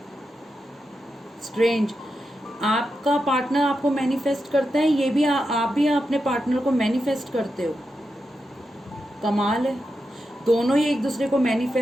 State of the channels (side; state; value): both; normal; correlation 0.88